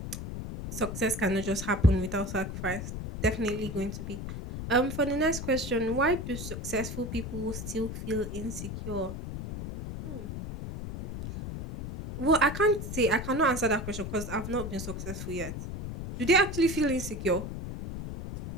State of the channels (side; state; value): left; noise; rumble, 7 dB below the sound